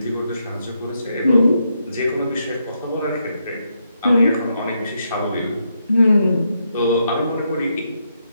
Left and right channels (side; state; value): both; inverted; correlation -0.80